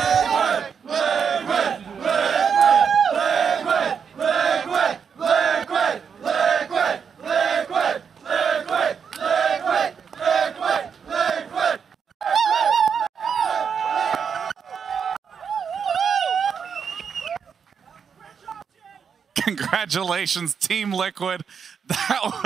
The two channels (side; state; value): left; quieter; 6.8 dB